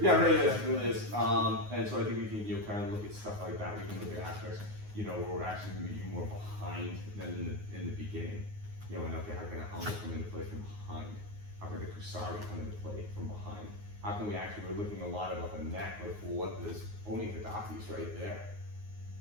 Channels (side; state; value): left; late; 9.5 ms